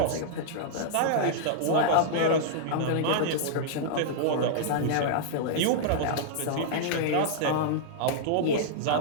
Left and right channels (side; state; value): both; different; correlation -0.01